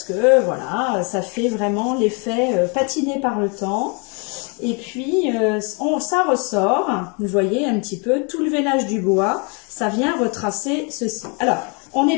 que, voilà, ça fait vraiment l'effet patiné par le temps. Et puis, ça ressort, vous voyez un petit peu, tout le veinage du bois, ça vient retracer ceci. Alors, on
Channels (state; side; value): quieter; right; 34.3 dB